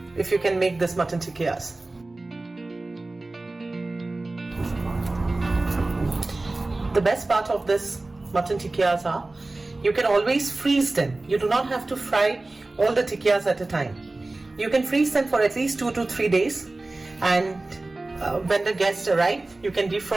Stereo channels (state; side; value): quieter; left; 3.0 dB